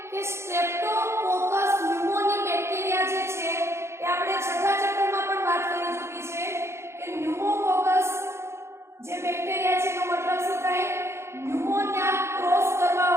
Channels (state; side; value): late; left; 0.13 ms